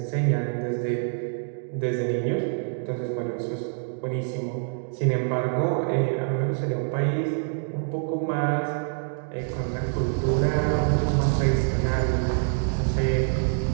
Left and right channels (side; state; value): left; silent; digital silence